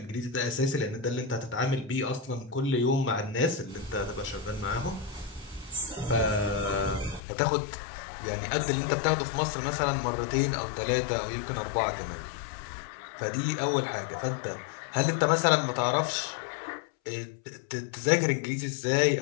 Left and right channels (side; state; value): right; drops out; at 7.2 s